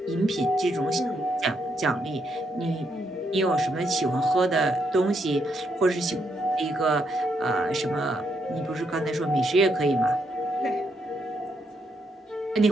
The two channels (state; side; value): normal; both; correlation 0.77